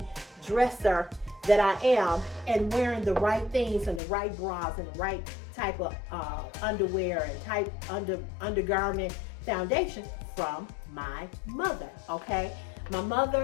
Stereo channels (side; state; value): right; drops out; at 4.0 s